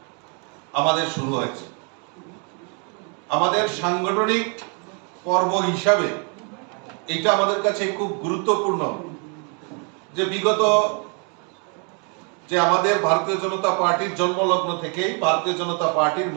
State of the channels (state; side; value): quieter; left; 36.9 dB